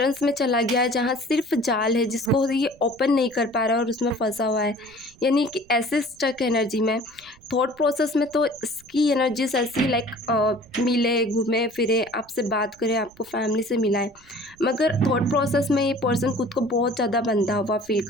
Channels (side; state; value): right; noise; rumble, 27 dB below the sound